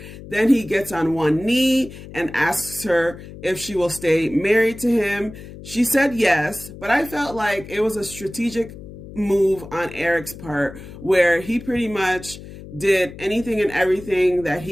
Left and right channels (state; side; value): noise; left; hum, 15 dB below the sound